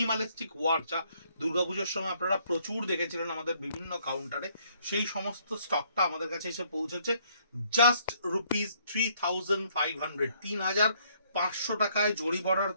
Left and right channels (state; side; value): inverted; both; correlation -0.66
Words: ওয়ার্ক, যা দুর্গাপুজোর সময় আপনারা প্রচুর দেখেছিলেন আমাদের বিভিন্ন কাউন্টারে, সেই সমস্ত স্টকটা আমাদের কাছে এসে পৌঁছেছে জাস্ট ₹3,500 3,500 টাকায়। জরি border